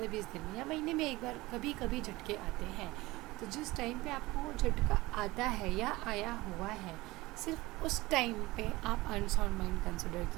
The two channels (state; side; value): quieter; left; 20.2 dB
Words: दिन में या महीने में एक बार कभी कभी झटके आते हैं, तो जिस टाइम पे आपको वो झटका आता है या आया हुआ है, सिर्फ उस टाइम पे आप अनसाउंड माइंड कंसिडर